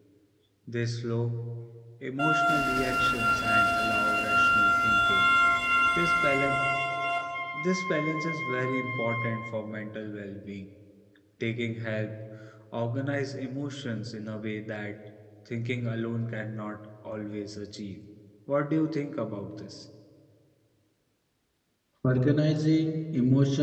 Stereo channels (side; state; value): both; identical; correlation 1.00